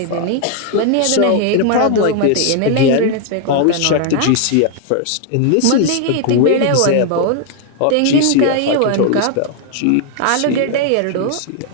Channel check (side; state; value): both; different; correlation 0.00